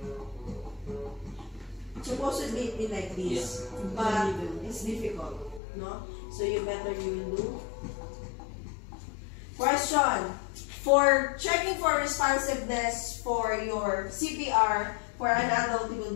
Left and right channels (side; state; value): right; drops out; at 5.6 s